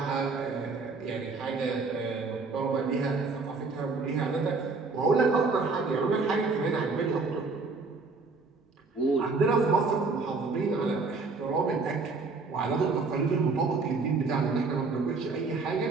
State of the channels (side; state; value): left; quieter; 4.1 dB